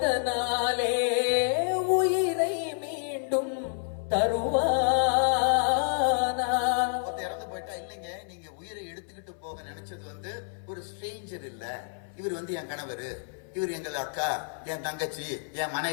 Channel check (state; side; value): silent; right; 59 dB below the other